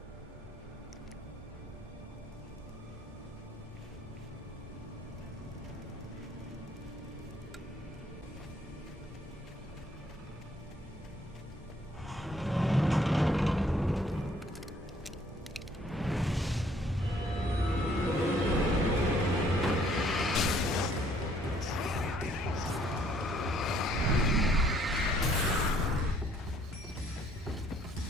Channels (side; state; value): both; normal; correlation 0.63